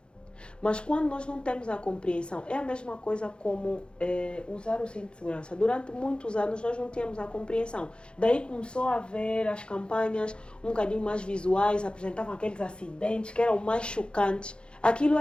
Mas quando nós não temos a compreensão, é a mesma coisa como usar o cinto de segurança. Durante muitos anos nós não tínhamos a compreensão. Daí começou a haver as campanhas um bocadinho mais visuais, apresentavam aqueles acidentes que eram mais chocantes. Aquilo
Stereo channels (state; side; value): late; right; 0.054 ms